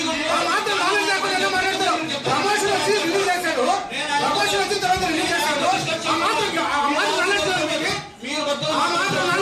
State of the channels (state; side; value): identical; both; correlation 1.00